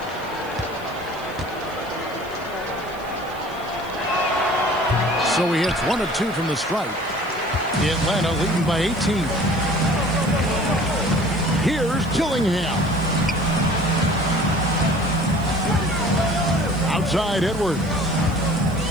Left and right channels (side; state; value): right; noise; hiss, 24 dB below the sound